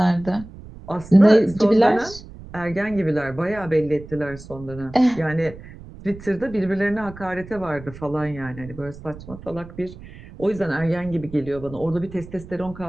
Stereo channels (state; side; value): noise; right; rumble, 16 dB below the sound